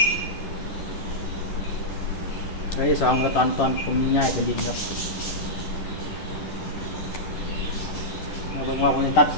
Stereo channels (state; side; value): late; right; 10 ms